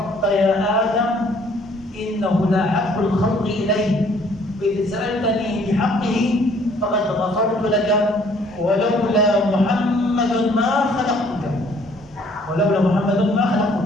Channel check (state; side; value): normal; both; correlation 0.60